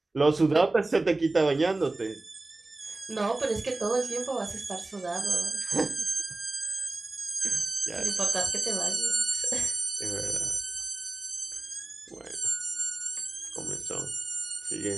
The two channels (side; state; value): left; quieter; 3.1 dB